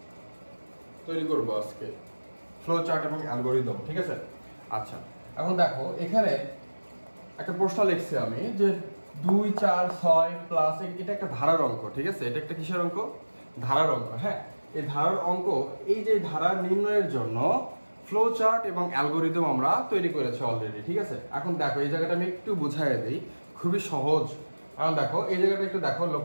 তৈরি করব আজকে, ফ্লো চার্ট এবং অ্যালগোরিদম। ঠিক আছে। আচ্ছা, এখন দেখো এখানে একটা প্রশ্ন লিখছি আমি যে 2, 4, 6 প্লাস, এটা একটা ধারার অঙ্ক। ঠিক আছে, এটা একটা কিসের অঙ্ক? ধারার অঙ্ক। হ্যাঁ, এই ধারার অঙ্ক, এই যে ধারা নির্ণয়ের জন্য ফ্লো চার্ট এবং অ্যালগোরিদম আমরা তৈরি করেছি অলরেডি। ঠিক আছে, এখন দেখো এই জায়গাটা আমি একটু বুঝাই দিই, খুবই সহজ। এখন দেখো এই জায়গাটা একটু দেখো,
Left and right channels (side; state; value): both; inverted; correlation -1.00